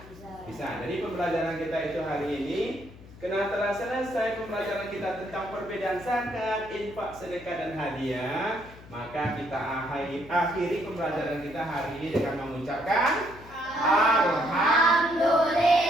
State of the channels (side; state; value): left; noise; hum, 19 dB below the sound